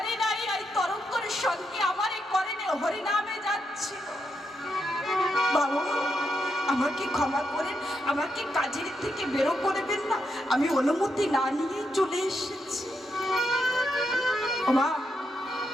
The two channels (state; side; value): normal; both; correlation 0.82